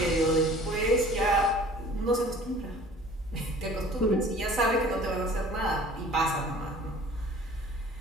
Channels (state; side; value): normal; both; correlation 0.48